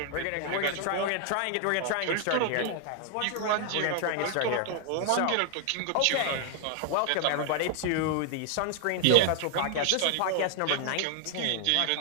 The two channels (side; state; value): both; different; correlation 0.00